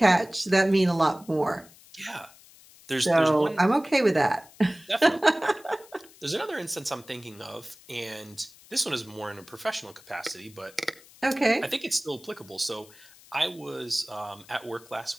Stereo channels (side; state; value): left; noise; hiss, 24 dB below the sound